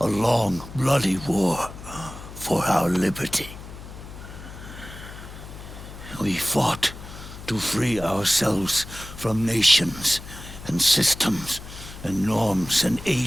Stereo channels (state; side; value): noise; left; hum, 14 dB below the sound